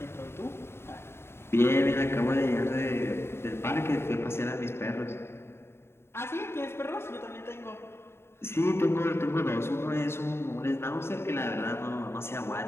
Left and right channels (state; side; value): late; right; 0.12 ms